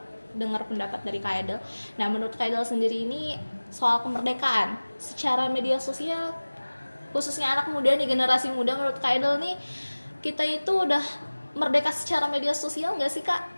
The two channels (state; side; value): inverted; both; correlation -1.00